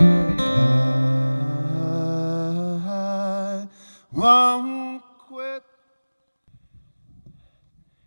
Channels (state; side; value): inverted; both; correlation -1.00